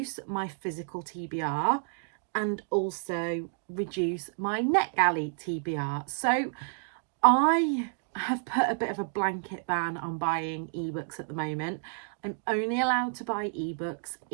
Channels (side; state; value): left; silent; digital silence